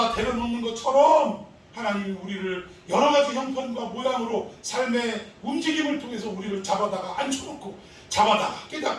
데려놓는 것처럼 하나님이 우리를 여러 가지 형편과 모양으로 삶의 움직임을 통해서 우리를 잡아다가 앉혀놓고 잡아다가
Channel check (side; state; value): both; identical; correlation 1.00